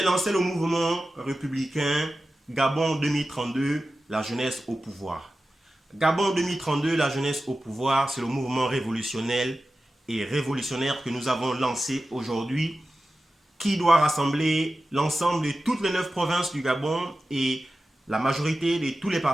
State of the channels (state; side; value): normal; both; correlation 0.94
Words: lancé le mouvement républicain Gabon 2032, la jeunesse au pouvoir. Gabon 2032, la jeunesse au pouvoir, c'est le mouvement révolutionnaire que nous avons lancé aujourd'hui, qui doit rassembler l'ensemble de toutes les 9 provinces du Gabon et la majorité de tous les